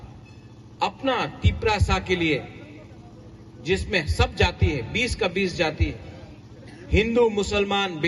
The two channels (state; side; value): identical; both; correlation 1.00